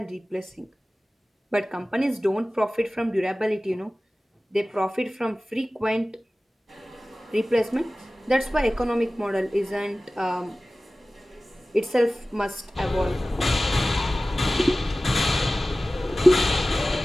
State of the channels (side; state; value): both; normal; correlation 0.97